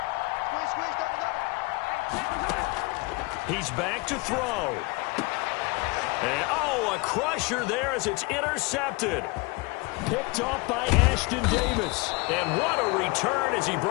He's back to throw. And, a crusher there as it's intercepted. Picked off by Ashton Davis. And what a return as he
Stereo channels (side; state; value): right; quieter; 25.3 dB